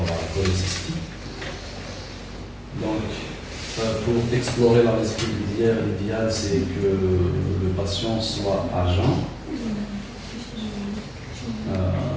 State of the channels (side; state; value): both; identical; correlation 1.00